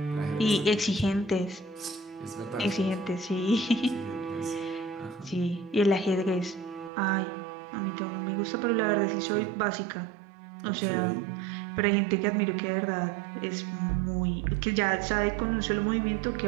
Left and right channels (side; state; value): left; drops out; at 6.9 s